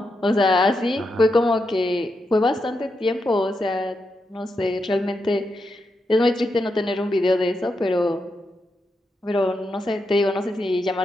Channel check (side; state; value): both; normal; correlation 0.85